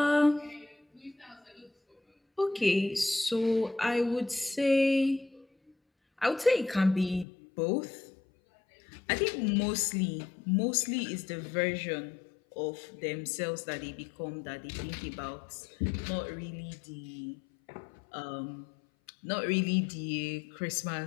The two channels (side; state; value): right; drops out; at 7.2 s